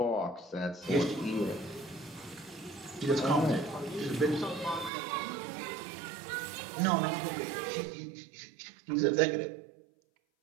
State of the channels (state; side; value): drops out; left; at 4.9 s